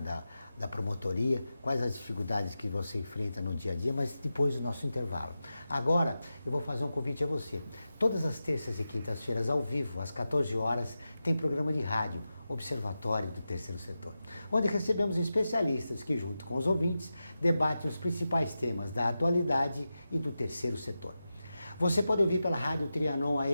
da promotoria, quais as dificuldades que você enfrenta no dia a dia, mas depois do nosso intervalo. Agora, eu vou fazer um convite a você. Todas as terças e quintas-feiras, ao vivo, às 14 horas, tem programa de rádio, Observatório do Terceiro Setor, onde recebemos especialistas que, junto com os ouvintes, debatem os principais temas da atualidade e do terceiro setor. Você pode ouvir pela Rádio Trianon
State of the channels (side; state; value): both; inverted; correlation -0.92